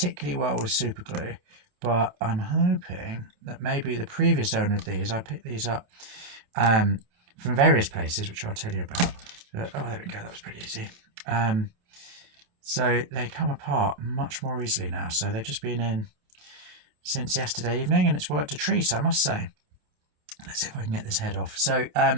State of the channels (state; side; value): late; left; 28 ms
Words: well with super glue, but I'm hoping that maybe the previous owner of these, I picked these up from various places, which I'll tell you about. Oh, there we go, that was pretty easy. So they come apart much more easily now. So they've just been in since yesterday evening, and it's worked a treat, I must say. Let's see if I can get this head off. So